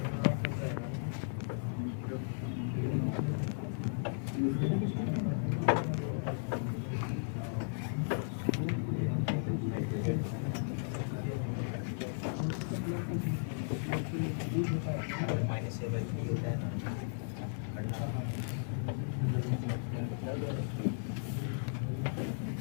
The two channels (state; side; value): silent; right; 54 dB below the other